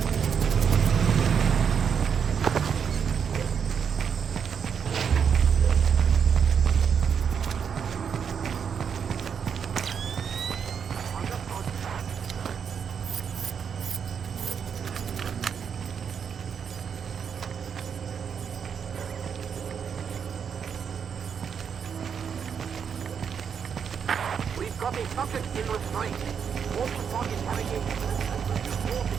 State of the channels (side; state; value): left; quieter; 7.1 dB